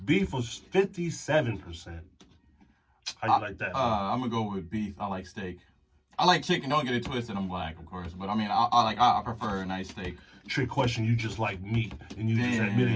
Beef was 57%. How you like that? I'm gonna go with beef. I like steak. I like chicken. Don't get it twisted. I'm black, of course, but I mean, I prefer a nice steak. Trick question. You just like meat, and you just Damn.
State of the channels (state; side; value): identical; both; correlation 1.00